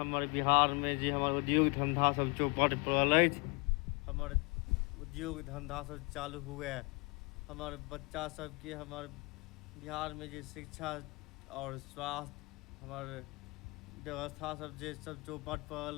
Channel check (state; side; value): quieter; right; 28.6 dB